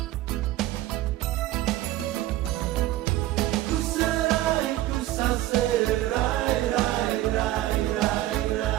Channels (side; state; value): left; quieter; 15.4 dB